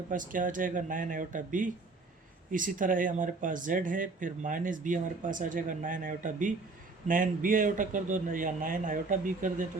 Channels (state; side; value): quieter; left; 3.7 dB